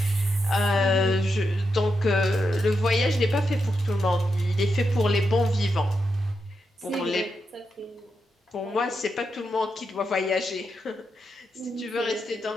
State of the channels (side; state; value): both; normal; correlation 0.85